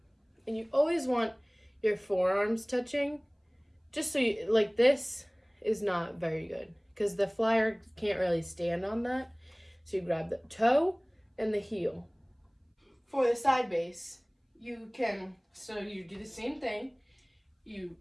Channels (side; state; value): both; identical; correlation 1.00